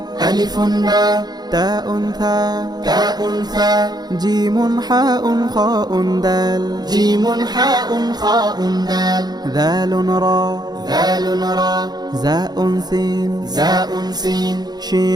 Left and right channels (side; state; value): left; late; 0.20 ms